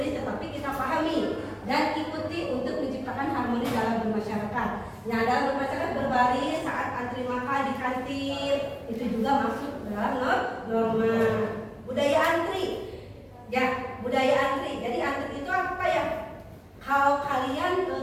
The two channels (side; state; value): both; identical; correlation 1.00